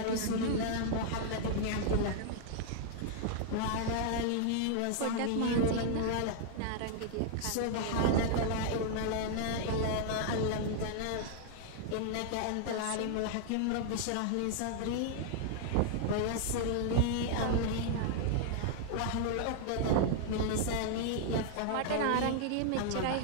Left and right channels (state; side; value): different; both; correlation 0.00